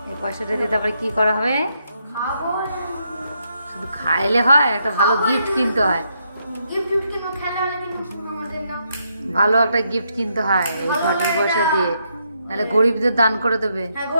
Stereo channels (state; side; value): inverted; both; correlation -0.78